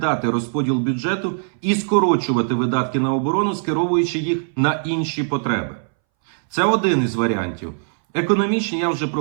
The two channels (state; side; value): silent; left; 63 dB below the other